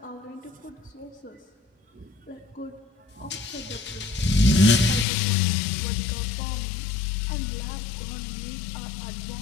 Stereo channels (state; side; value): drops out; right; at 5.1 s